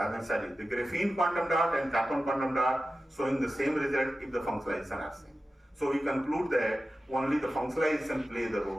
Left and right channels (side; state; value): both; normal; correlation 0.94